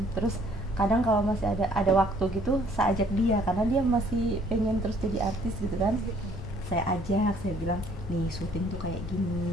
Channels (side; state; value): left; noise; rumble, 12 dB below the sound